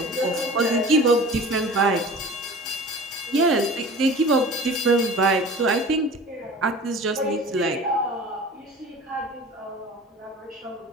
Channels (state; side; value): normal; both; correlation 0.40